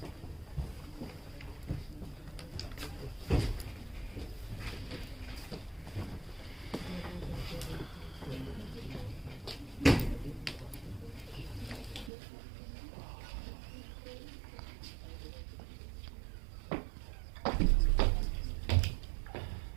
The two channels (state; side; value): drops out; left; at 12.1 s